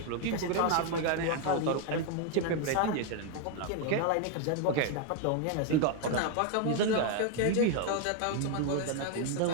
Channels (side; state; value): both; different; correlation 0.01